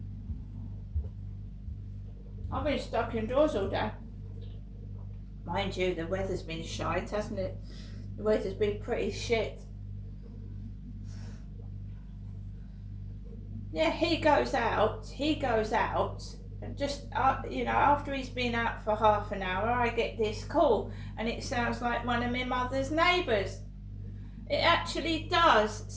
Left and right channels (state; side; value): identical; both; correlation 1.00